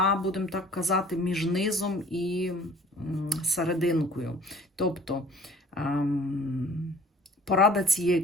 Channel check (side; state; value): both; normal; correlation 0.51